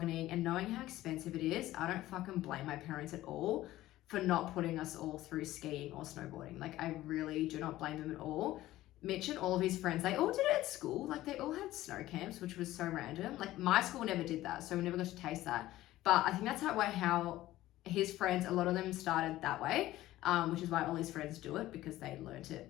and knowing how expensive it is, I don't fucking blame my parents at all for not putting us all through skiing or snowboarding. Like, I really do not blame them at all. Mitch and all of his friends, they all did it at school. Like, they all had snow camps, which was so random. Like, my school never did that, so we never got to taste that. But I think that's how his friends, a lot of them started that way, which is why all his friends do it, because they learned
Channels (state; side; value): quieter; right; 15.6 dB